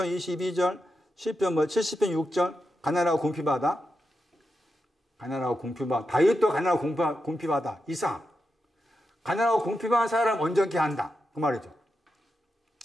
22절, 시편 70편 6절. 가난하고 궁핍하다. 가난하고 궁핍하다. 다윗도 가난하고 궁핍하다. 이삭. 가난하고 궁핍한 사람 온전케 한다. 그 말이죠.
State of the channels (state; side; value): normal; both; correlation 0.88